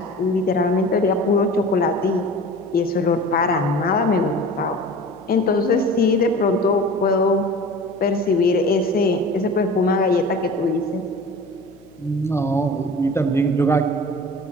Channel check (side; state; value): left; noise; hum, 26 dB below the sound